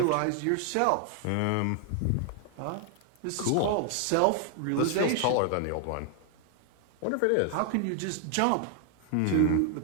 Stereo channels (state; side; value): different; both; correlation 0.00